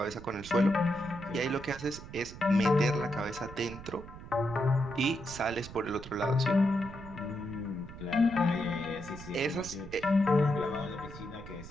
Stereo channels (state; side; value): noise; right; rumble, 14 dB below the sound